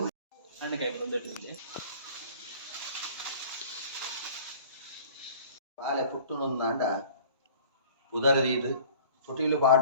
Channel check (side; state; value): both; inverted; correlation -0.47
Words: ಪಾಲೆ ಪುಟ್ಟುನೊಂದಾಂಡ ಉದರದೀದು ತೊಟಿಲು